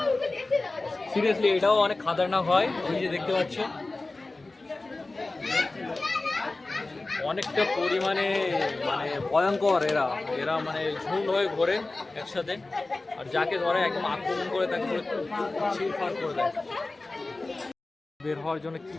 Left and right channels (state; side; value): quieter; right; 3.2 dB